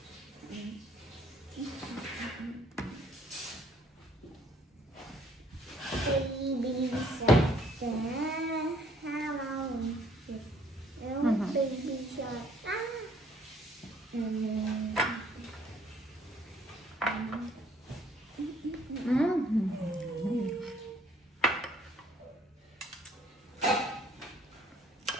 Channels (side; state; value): both; normal; correlation 0.61